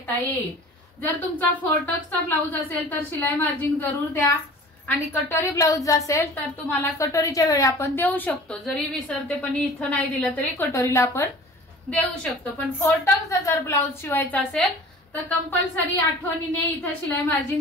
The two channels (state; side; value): normal; both; correlation 0.43